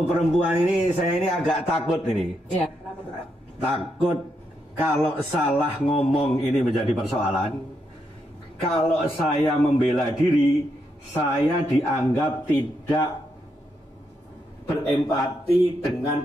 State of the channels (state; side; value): normal; both; correlation 0.81